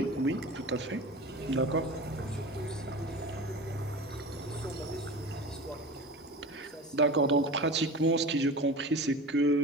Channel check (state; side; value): normal; both; correlation 0.33